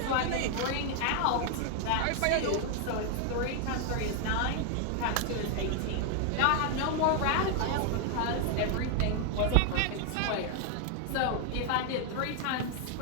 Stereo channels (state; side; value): different; both; correlation 0.00